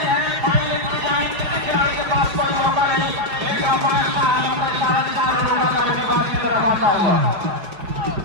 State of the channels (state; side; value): late; left; 5.4 ms